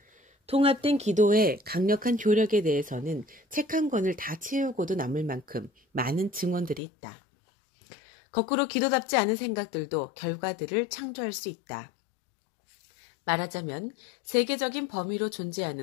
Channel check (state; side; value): drops out; right; at 6.8 s